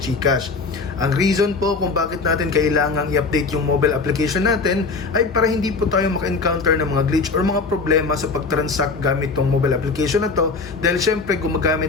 Ang reason po kung bakit natin kailangang i-update yung mobile application natin ay para hindi po tayo maka-encounter ng mga glitch or mga problema sa pag-transact gamit tong mobile application na to, dahil syempre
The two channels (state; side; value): quieter; right; 4.2 dB